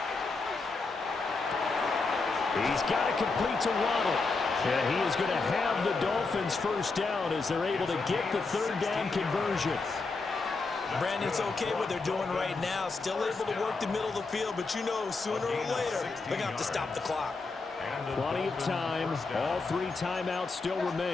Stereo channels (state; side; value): quieter; right; 4.0 dB